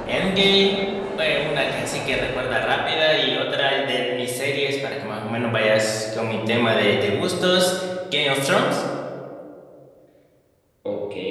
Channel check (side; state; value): both; identical; correlation 1.00